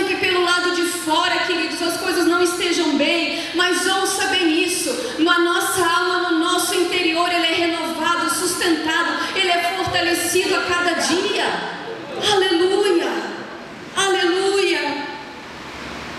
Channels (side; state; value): both; identical; correlation 1.00